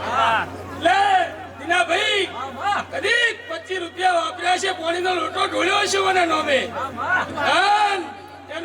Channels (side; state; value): both; identical; correlation 1.00